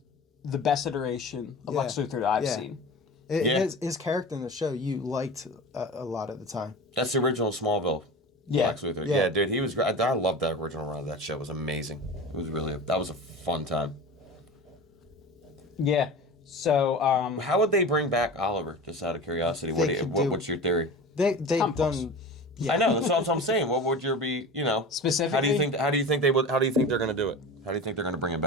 the best iteration of Lex Luthor that I've seen. His character in the show you liked a lot of the time. That's the original Smallville. Yeah. Lex Luthor. Yeah, dude, he was great. I loved that original run of that show. It was amazing. It was that was a fun time. Yeah. So how would they bring back Oliver? Just out of curiosity, what's your theory? They've done. Yeah. I know that's what I'm saying. What would your be? Specifically, How do you think they're going to do it? How do you think they're going to bring it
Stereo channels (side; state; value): both; normal; correlation 0.32